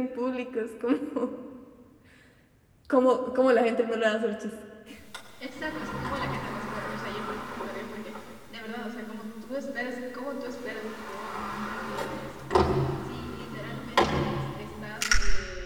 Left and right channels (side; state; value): both; identical; correlation 1.00